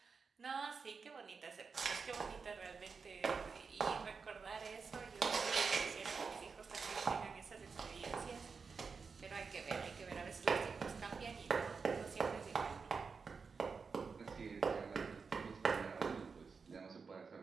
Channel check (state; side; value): quieter; left; 5.2 dB